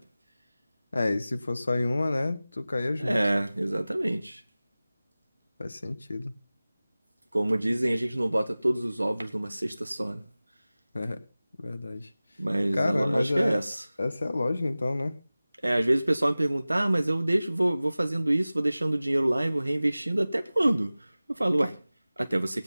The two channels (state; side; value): inverted; both; correlation -0.97